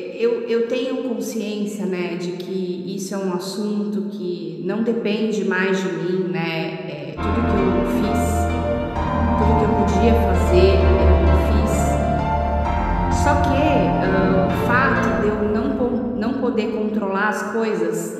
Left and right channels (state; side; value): identical; both; correlation 1.00